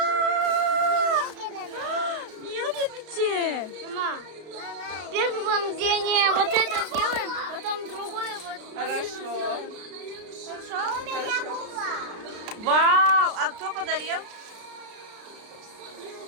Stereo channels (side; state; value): left; late; 33 ms